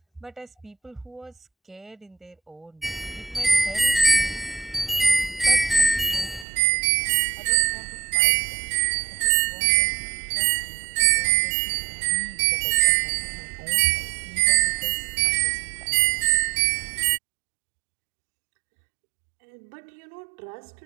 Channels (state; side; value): drops out; left; at 6.5 s